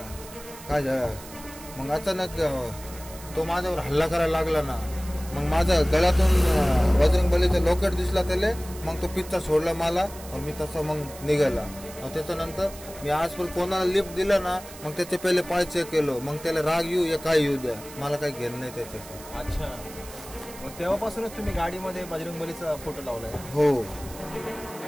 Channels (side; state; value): right; noise; hiss, 16 dB below the sound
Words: काय मग अचानक तो माझ्यावर हल्ला करायला लागला ना. मग माझ्या गळ्यातून बजरंगबलीचं लॉकेट दिसला त्याला. मग तो पिच्चा सोडला मला आणि मी तसं मग निघाला. त्याच्यानंतर मी आजपर्यंत कोणाला लिफ्ट दिलं ना मग त्याचे पहिले पाय चेक केलो. मग त्याला राग येऊ या काय येऊ द्या, मला काही घेणं नाही त्याच्याशी. अच्छा, मग तेव्हापासूनच तुम्ही गाडीमध्ये बजरंगबलीचा फोटो लावलाय? हो.